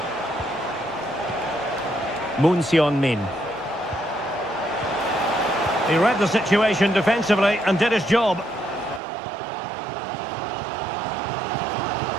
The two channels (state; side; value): drops out; left; at 9.0 s